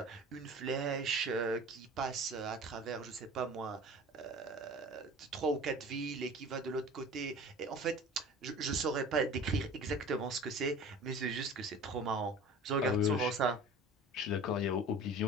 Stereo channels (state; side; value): normal; both; correlation 0.41